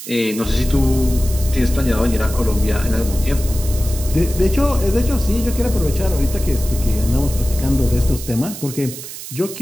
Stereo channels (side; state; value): right; noise; hiss, 11 dB below the sound